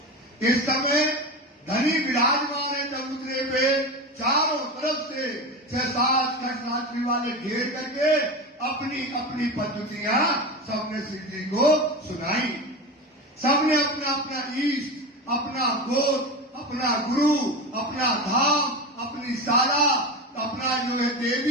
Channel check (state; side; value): normal; both; correlation 0.24